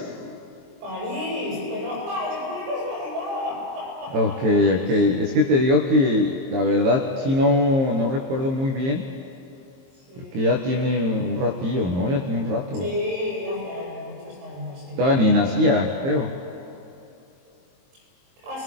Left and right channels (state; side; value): late; left; 22 ms